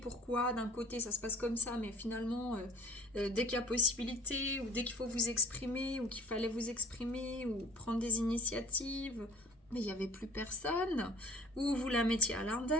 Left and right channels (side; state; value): both; normal; correlation 0.48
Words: d'un côté ça se passe comme ça, mais finalement dès qu'il y a possibilité ou dès qu'il faut vous exprimer ou qu'il fallait vous exprimer ou prendre des initiatives, mais il n'y avait plus personne, ou vous la mettiez à